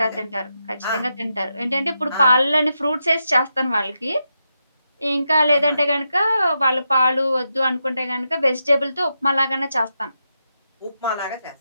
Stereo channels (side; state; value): both; inverted; correlation -0.86